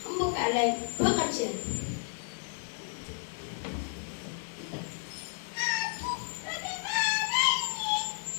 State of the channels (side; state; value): right; silent; digital silence